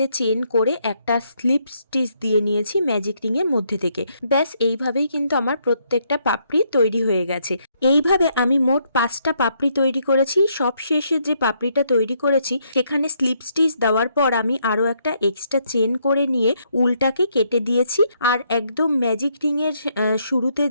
চেন করে একটা স্লিপ স্টিচ দিয়ে নিয়েছি ম্যাজিক রিং এর মধ্যে থেকে। ব্যাস এইভাবেই কিন্তু আমার প্রত্যেকটা পাপড়ি তৈরি হয়ে গেছে। এইভাবে আমি মোট 5টা পাপড়ি তৈরি করেছি। সব শেষে যে পাপড়িটা তৈরি করেছি সেখানে স্লিপ স্টিচ দেওয়ার পর আমি আরও একটা এক্সট্রা চেন করে নিয়ে উলটাকে কেটে দিয়েছি। আর একদম ম্যাজিক রিং এর শুরুতে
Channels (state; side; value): inverted; both; correlation -0.73